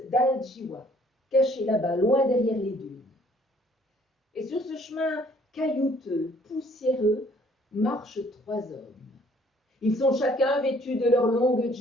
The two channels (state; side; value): normal; both; correlation 0.60